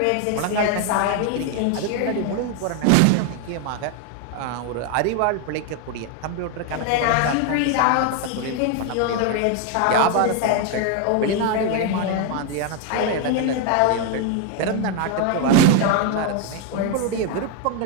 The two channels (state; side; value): different; both; correlation 0.01